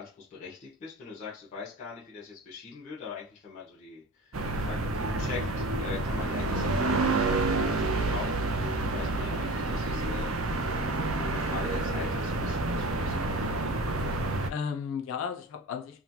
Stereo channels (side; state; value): both; normal; correlation 0.35